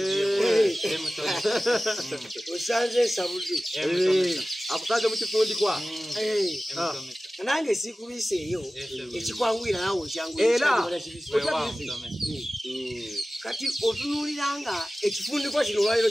osanze ensabudde akusanze mu kifundikwa nange sikubiseeyo ekikwangwira nawe era kati otunuuliranga ekifundikwa kino olwaliro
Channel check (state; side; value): normal; both; correlation 0.96